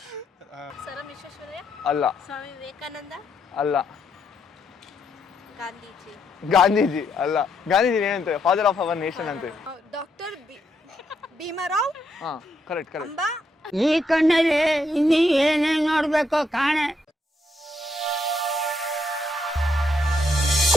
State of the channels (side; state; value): both; normal; correlation 0.77